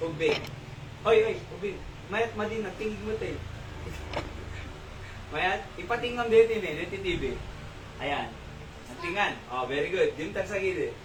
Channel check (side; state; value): both; identical; correlation 1.00